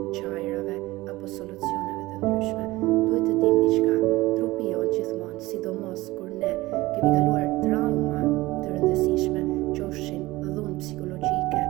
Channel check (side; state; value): left; quieter; 19.3 dB